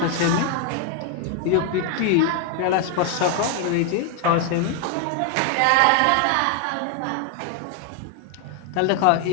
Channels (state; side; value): different; both; correlation 0.01